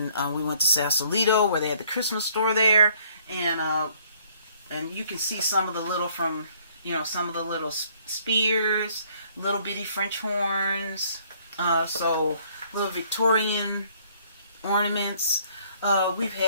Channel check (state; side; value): inverted; both; correlation -0.62